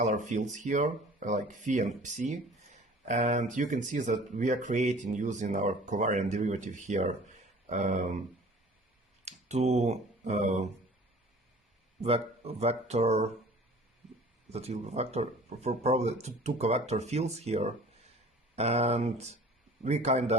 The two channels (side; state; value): both; normal; correlation 0.47